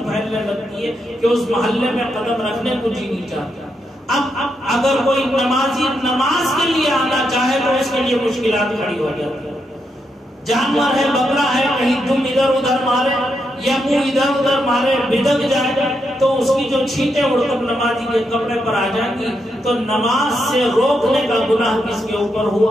پھیلنے لگتی ہے کہ اس محلے میں قدم رکھنے کو جی نہیں چاہتا۔ اب اگر کوئی نمازی نماز کے لیے آنا چاہے تو اس کے لیے مشکلات کھڑی ہو جاتی ہے۔ جانور ہے، بکرا ہے، کہیں دم ادھر ادھر مارے یا منہ ادھر ادھر مارے، بھدک جائے تو اس کی جو چھینٹیں اڑ کر نمازی کے کپڑے پر آ جائیں گی تو نماز سے روکنے کا گناہ کس کے اوپر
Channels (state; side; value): normal; both; correlation 0.82